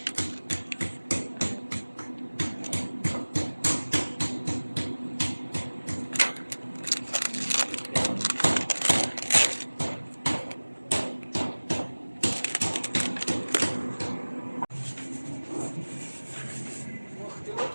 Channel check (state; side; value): inverted; both; correlation -1.00